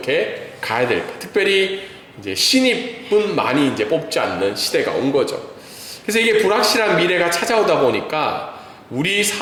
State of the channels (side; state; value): both; identical; correlation 1.00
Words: 가야 될까? 특별히 이제 신입은 많이 이제 뽑지 않는 시대가 온 거죠. 그래서 이게 불확실한 미래가 찾아오다 보니까